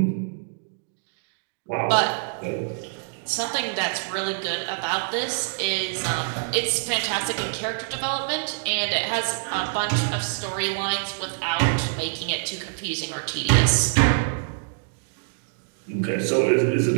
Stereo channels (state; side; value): silent; left; digital silence